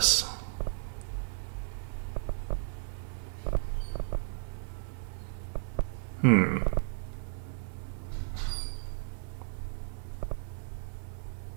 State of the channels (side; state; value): left; silent; digital silence